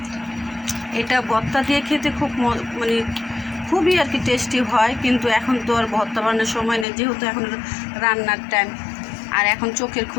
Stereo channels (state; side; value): drops out; right; at 6.9 s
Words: এটা ভর্তা দিয়ে খেতে খুব মানে খুবই আর কি টেস্টি হয়। কিন্তু এখন তো আর ভর্তা বানানোর সময় নেই, যেহেতু এখন রান্নার টাইম। আর এখন চোখের